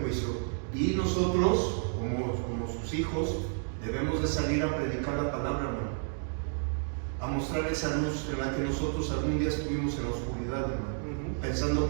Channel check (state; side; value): silent; left; 57 dB below the other